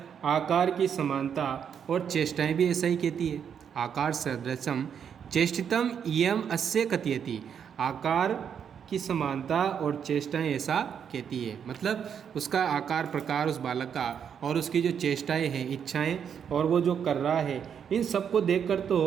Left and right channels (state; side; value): quieter; left; 7.8 dB